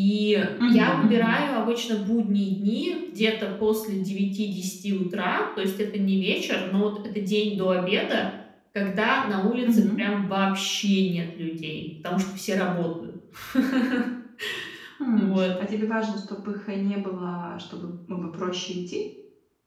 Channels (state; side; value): identical; both; correlation 1.00